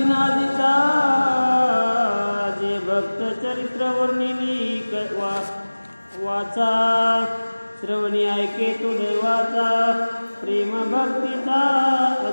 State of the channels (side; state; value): both; inverted; correlation -1.00